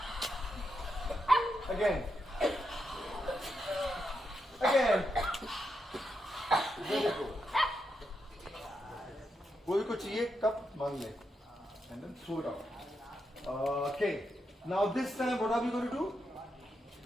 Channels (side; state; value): both; normal; correlation 0.84